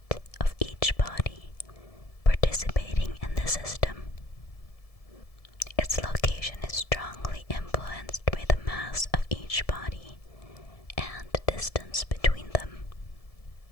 of each body participating in the system. Its location is strongly influenced by the mass of each body and the distance between them.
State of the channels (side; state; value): right; late; 1.7 ms